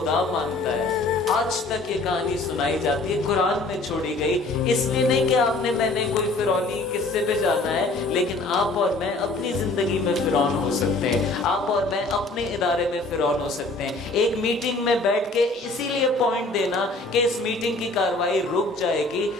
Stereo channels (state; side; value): quieter; right; 3.1 dB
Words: مانتا ہے. آج تک یہ کہانی سنائی جاتی ہے, قرآن میں چھوڑی گئی. اس لیے نہیں کہ آپ نے میں نے کوئی فرعونی قصے پہ جانا ہے, لیکن آپ اور میں اپنی زندگی میں فرعون ہو سکتے ہیں. آپ اور میں اپنے ادارے میں فرعون ہو سکتے ہیں. ایک میٹنگ میں بیٹھ کے اسی لیے پوائنٹ دینا کہ اس میٹنگ کی کاروائی رک جائے گی,